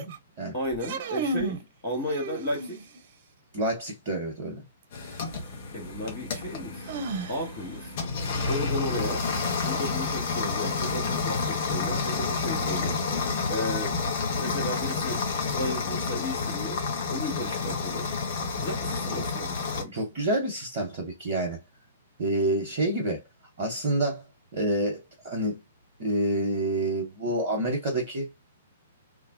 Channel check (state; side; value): inverted; both; correlation -0.41